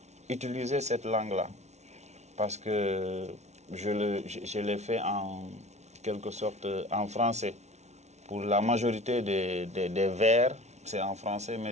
utiliser cette langue-là. Parce que je l'ai fait en quelque sorte en français. Pour la majorité des vers, c'est en français,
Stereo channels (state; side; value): late; left; 0.32 ms